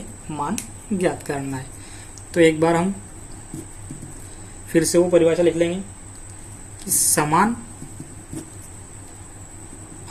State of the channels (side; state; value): both; identical; correlation 1.00